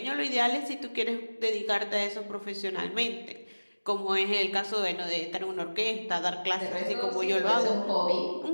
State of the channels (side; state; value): both; inverted; correlation -1.00